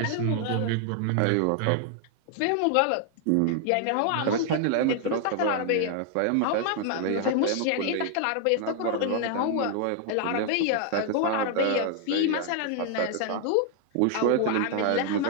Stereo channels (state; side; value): different; both; correlation 0.00